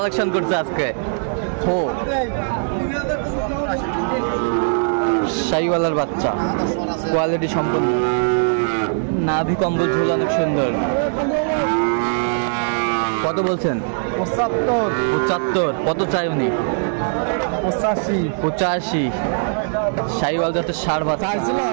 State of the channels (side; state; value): left; silent; digital silence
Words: করছে আজকে। শাহিওয়ালের বাচ্চা, কোয়ালিটি সম্পন্ন, নাভি কম্বল ঝুল অনেক সুন্দর। কত বলছেন? 75। কত চাই উনি? 85। শাহিওয়াল জাতের ষাঁড় বাচ্চা